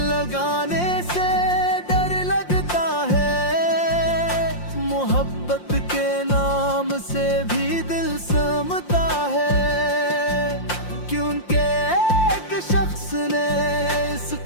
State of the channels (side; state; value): right; late; 5.7 ms